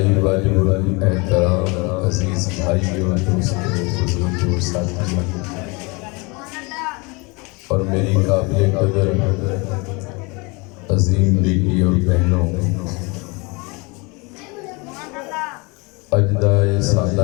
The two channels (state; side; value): quieter; right; 28.1 dB